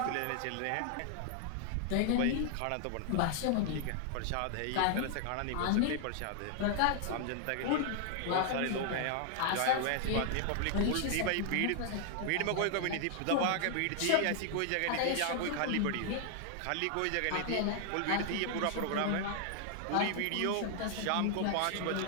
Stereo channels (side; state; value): both; different; correlation 0.00